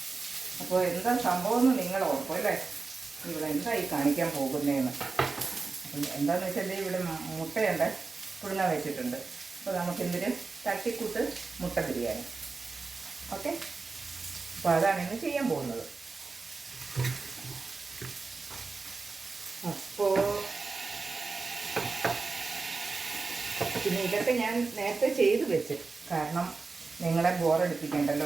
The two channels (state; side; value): quieter; left; 4.1 dB